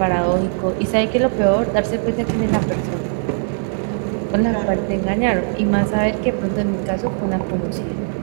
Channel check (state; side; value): silent; left; digital silence